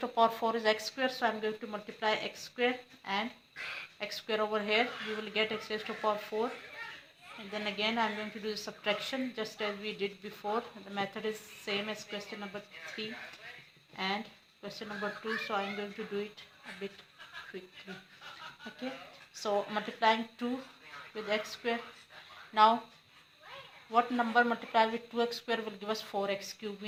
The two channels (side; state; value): both; identical; correlation 1.00